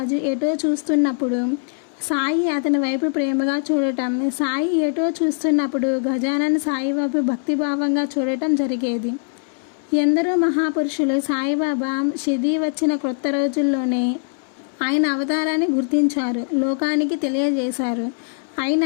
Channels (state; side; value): silent; right; 65 dB below the other